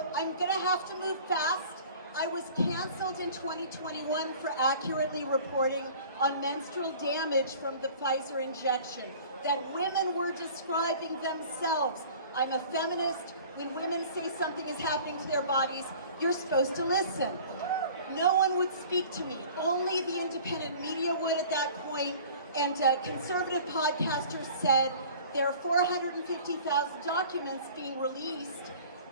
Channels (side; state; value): both; inverted; correlation -0.45